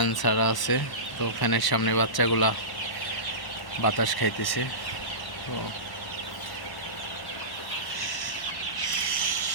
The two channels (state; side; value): late; right; 1.1 ms